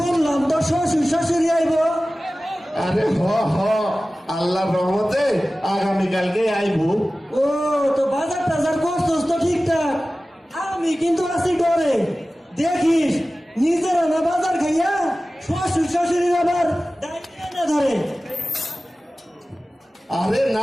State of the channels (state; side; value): normal; both; correlation 0.96